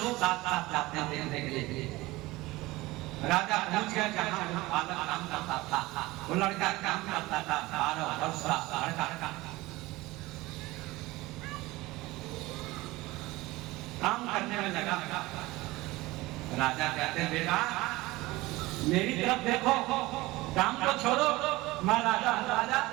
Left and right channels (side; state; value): left; quieter; 20.0 dB